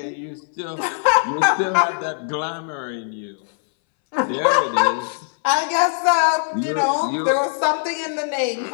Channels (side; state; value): right; silent; 63 dB below the other